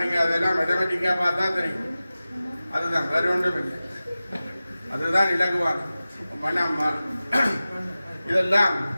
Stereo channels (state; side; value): inverted; both; correlation -0.96